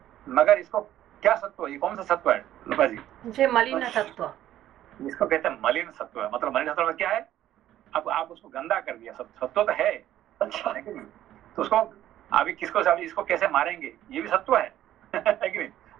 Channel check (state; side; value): quieter; left; 12.7 dB